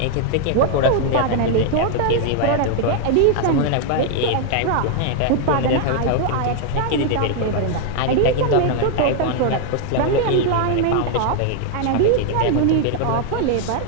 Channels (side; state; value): both; different; correlation 0.00